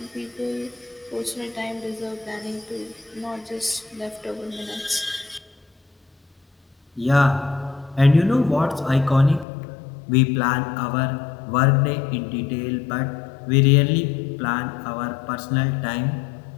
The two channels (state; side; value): drops out; right; at 9.5 s